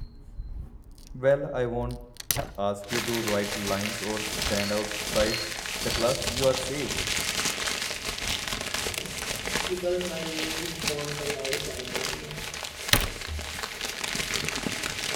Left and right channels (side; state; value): both; identical; correlation 1.00